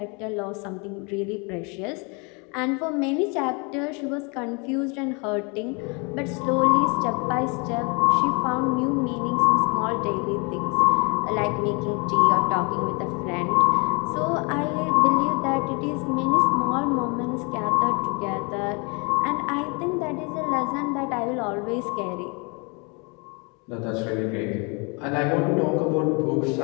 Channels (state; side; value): quieter; right; 31.8 dB